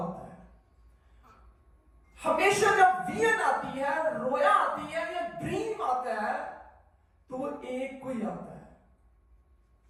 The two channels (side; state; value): both; identical; correlation 1.00